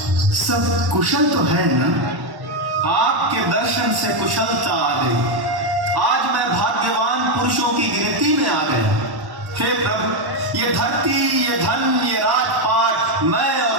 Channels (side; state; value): left; late; 1.1 ms